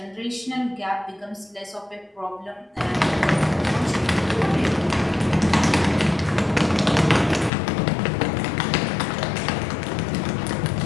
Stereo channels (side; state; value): right; drops out; at 7.5 s